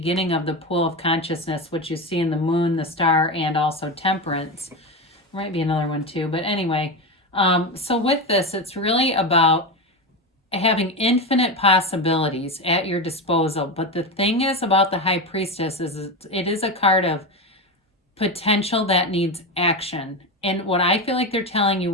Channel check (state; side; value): normal; both; correlation 0.17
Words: of the pool of consciousness, which you see in the moon, the star, and also temperance. There might be another one too, but anyway, so with this, it's really about having infinite possibilities at your disposal. But the thing is about the High Priestess is it is a card of potential that needs action. And what I feel like they're telling you